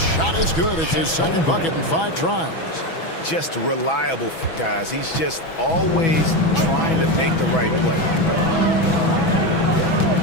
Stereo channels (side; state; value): right; late; 6.1 ms